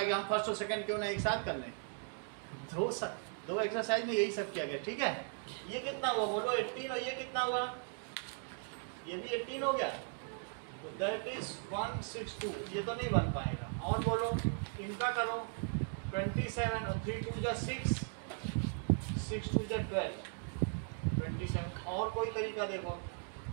हम फर्स्ट और सेकंड क्यों ना एक साथ कर लें? दो एक्सरसाइज में यही सब किया गया, ठीक है। ये कितना हुआ बोलो? 18, और ये कितना हुआ? ये भी 18 हो गया, तो दैट इज 162। ये तो नहीं बन पाएगा, और बोलो इनका करो 27 और 3 2 जा 6, 6 2 जा 12, 27। और कोई तरीका देखो,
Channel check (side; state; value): left; silent; 53 dB below the other